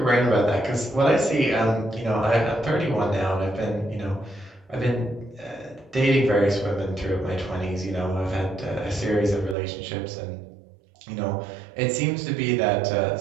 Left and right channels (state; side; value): drops out; left; at 9.6 s